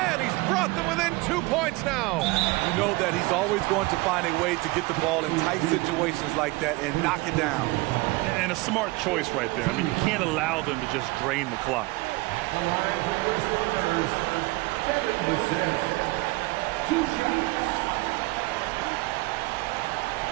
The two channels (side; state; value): left; quieter; 22.6 dB